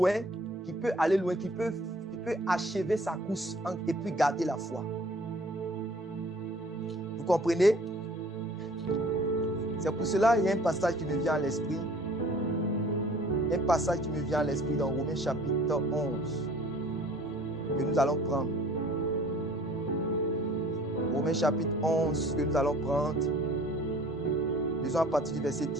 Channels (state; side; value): normal; both; correlation 0.51